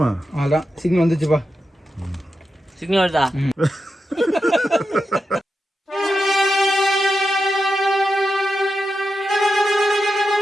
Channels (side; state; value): both; normal; correlation 0.89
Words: அதான் சிக்னல் வந்துச்சுப்பா. சிக்னல் வருதா?